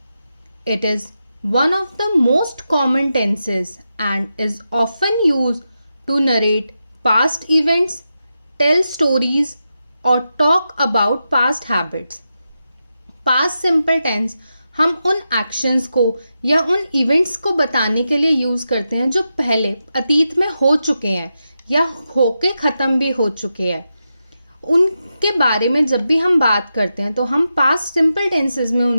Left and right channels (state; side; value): inverted; both; correlation -0.88